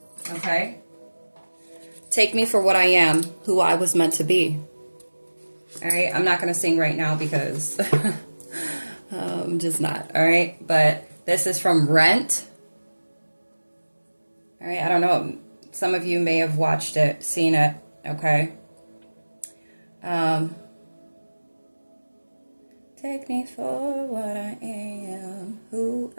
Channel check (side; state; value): both; inverted; correlation -1.00